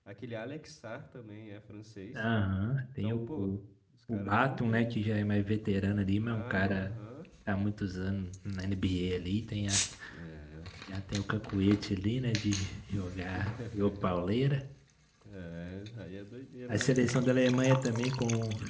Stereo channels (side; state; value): both; identical; correlation 1.00